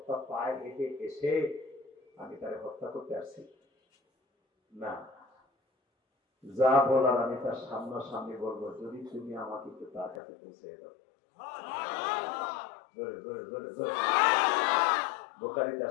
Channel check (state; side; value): drops out; right; at 10.2 s